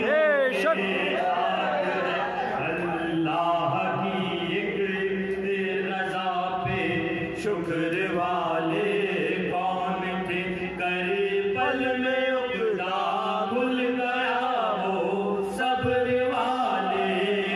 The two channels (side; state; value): both; identical; correlation 1.00